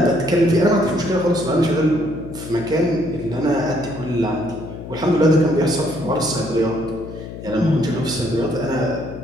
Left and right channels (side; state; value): left; noise; hum, 11 dB below the sound